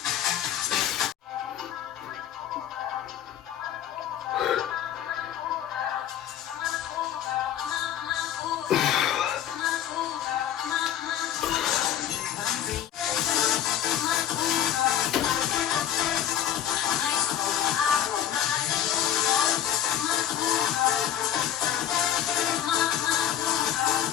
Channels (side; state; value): right; quieter; 10.4 dB